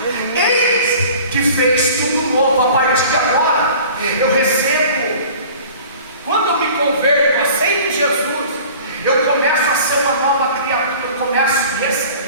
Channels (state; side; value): inverted; both; correlation -0.45